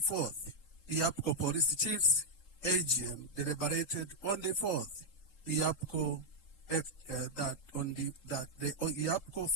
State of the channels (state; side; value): late; right; 3.7 ms